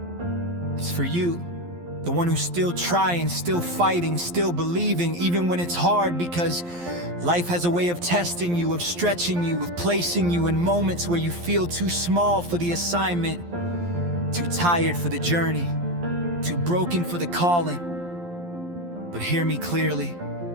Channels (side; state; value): left; late; 11 ms